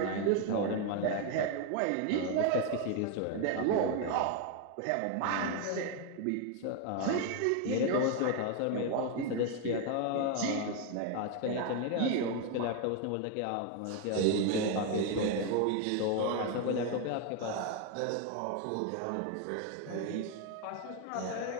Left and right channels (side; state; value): both; different; correlation 0.01